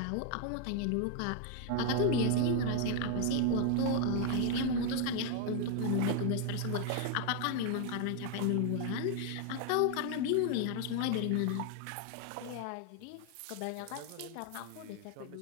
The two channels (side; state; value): both; different; correlation 0.00